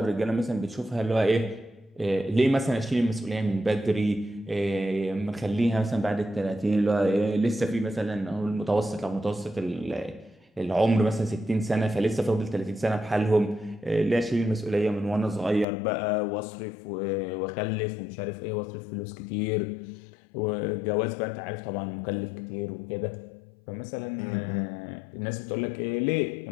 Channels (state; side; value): drops out; right; at 15.7 s